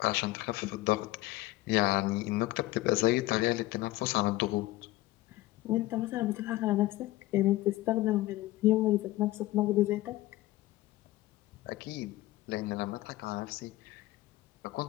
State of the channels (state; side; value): quieter; right; 17.5 dB